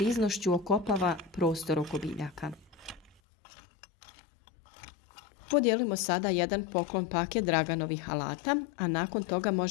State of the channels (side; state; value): right; drops out; at 3.2 s